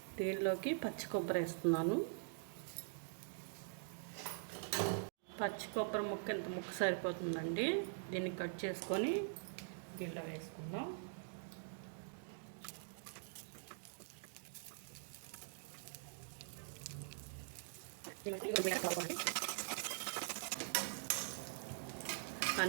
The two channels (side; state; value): left; silent; digital silence